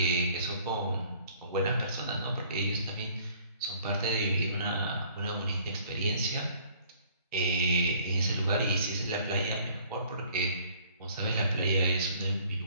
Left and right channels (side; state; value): both; inverted; correlation -0.56